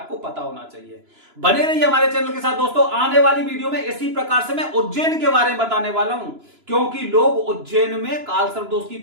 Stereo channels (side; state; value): left; late; 2.9 ms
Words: पता होना चाहिए। बने रहिए हमारे चैनल के साथ दोस्तों। आने वाली वीडियो में इसी प्रकार से मैं उज्जैन के बारे में बताने वाला हूं, क्योंकि लोग उज्जैन में काल सर्पदोष की